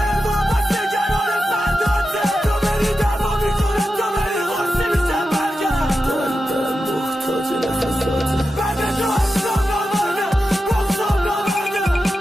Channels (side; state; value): both; normal; correlation 0.91